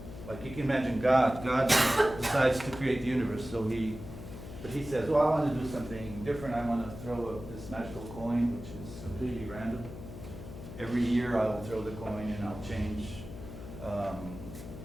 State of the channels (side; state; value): left; noise; hum, 12 dB below the sound